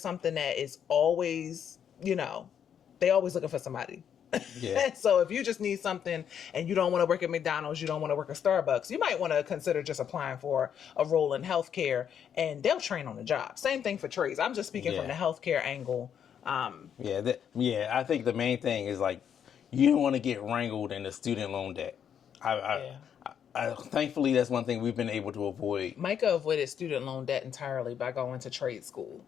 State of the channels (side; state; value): right; quieter; 8.5 dB